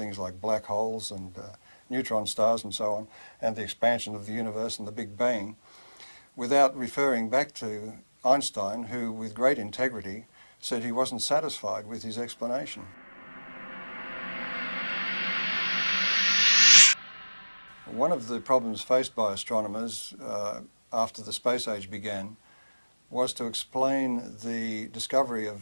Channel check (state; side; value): inverted; both; correlation -1.00